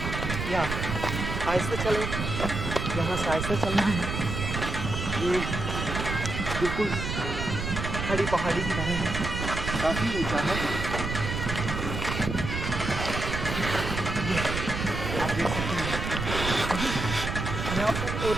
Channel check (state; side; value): noise; right; rumble, 4 dB below the sound